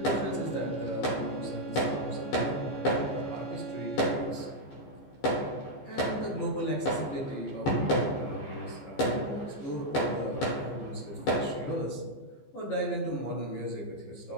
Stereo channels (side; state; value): right; late; 15 ms